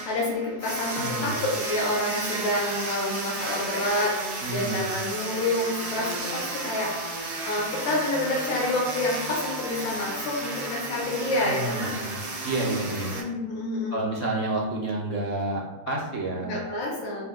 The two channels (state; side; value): late; right; 13 ms